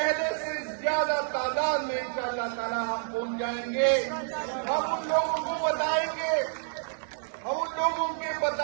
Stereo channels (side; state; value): left; silent; digital silence